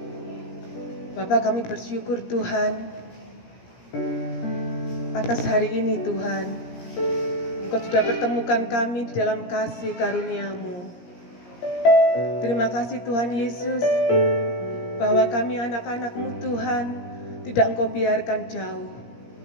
Bapa, kami bersyukur Tuhan atas hari ini Tuhan. Engkau sudah pertemukan kami di dalam kasih karunia-Mu. Terima kasih Tuhan Yesus, bahwa kami anak-anak-Mu Tuhan tidak Engkau biarkan jauh.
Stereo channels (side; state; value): right; late; 17 ms